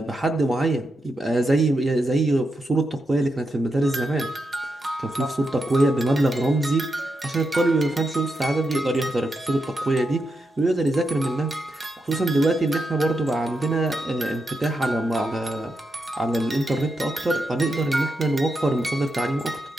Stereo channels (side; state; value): both; normal; correlation 0.85